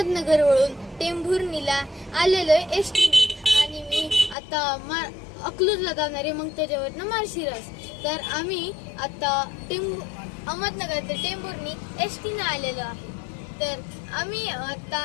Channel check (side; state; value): right; drops out; at 4.4 s